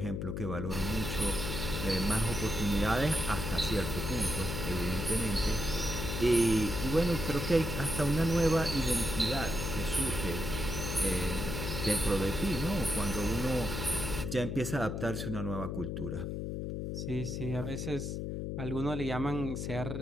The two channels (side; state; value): left; noise; hum, 4 dB below the sound